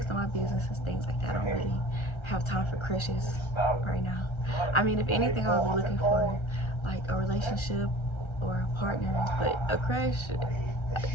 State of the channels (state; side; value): late; right; 1.3 ms